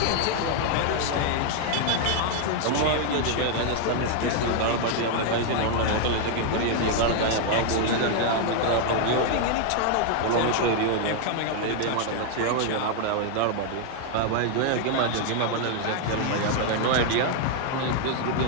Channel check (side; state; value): both; different; correlation 0.00